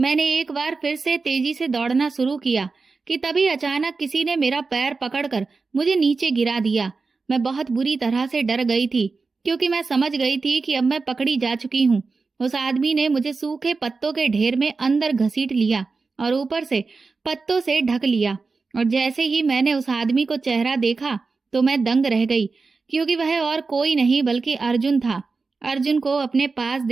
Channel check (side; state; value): left; quieter; 4.3 dB